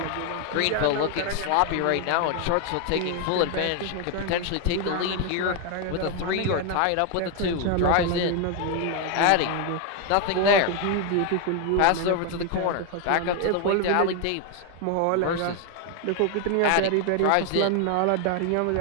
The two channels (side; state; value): both; different; correlation 0.01